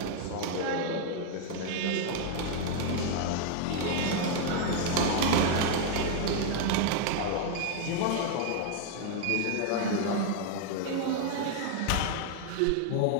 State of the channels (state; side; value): different; both; correlation 0.00